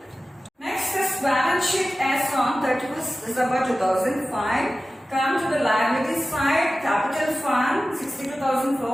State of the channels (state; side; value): normal; both; correlation 0.95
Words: Next is balance sheet as on 31st December 2005. Come to the liability side, capital fund